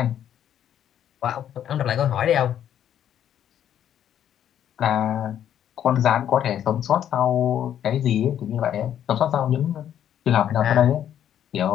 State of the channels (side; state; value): right; quieter; 10.2 dB